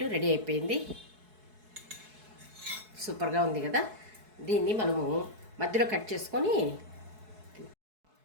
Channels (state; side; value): late; left; 4.7 ms